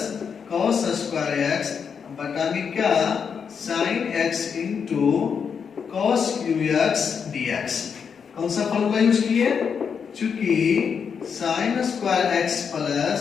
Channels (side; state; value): right; quieter; 6.6 dB